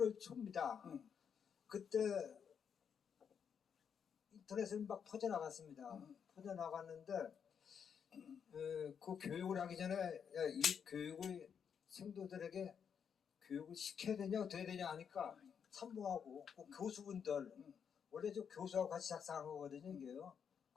초입니다. 그때 인터넷에 막 퍼져나갔습니다. 퍼져나갔는데 그 교육을 하기 전에 야, 이 교육을 생도들에게 교육을 시켜야 되냐 어떻게 되냐 하니까 참모하고 그 교수분들 원래 저 교수하고 같이 작성한 거거든요. 이게요.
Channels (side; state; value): right; quieter; 7.3 dB